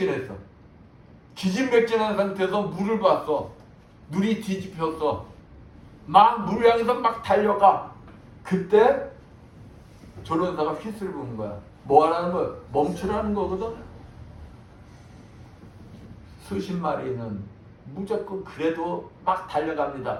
기진맥진한 상태에서 물을 봤어. 눈이 뒤집혔어. 막 물 향해서 막 달려가. 그때 조련사가 휘스를 부는 거야. 뭐 하라는 거야? 멈추라는 거거든. 수십 마리는 무조건 그래도 막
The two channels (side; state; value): both; identical; correlation 1.00